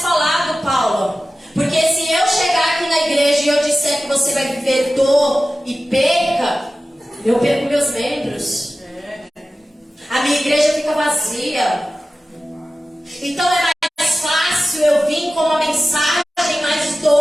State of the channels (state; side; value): normal; both; correlation 0.95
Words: falado, Paulo? Porque se eu chegar aqui na igreja e eu disser que você vai viver dor e perca, eu perco meus membros. A minha igreja fica vazia. Então é mais fácil eu vir com uma mensagem mais